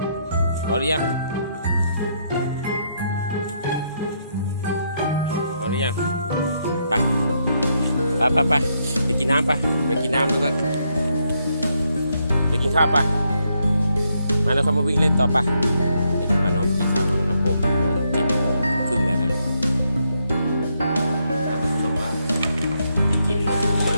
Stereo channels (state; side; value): inverted; both; correlation -0.77